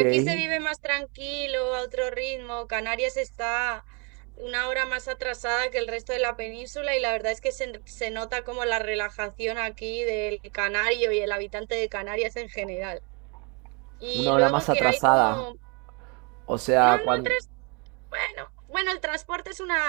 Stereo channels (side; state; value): left; quieter; 32.9 dB